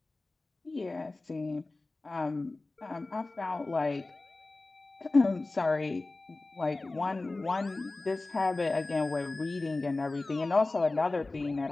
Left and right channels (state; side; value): quieter; right; 3.2 dB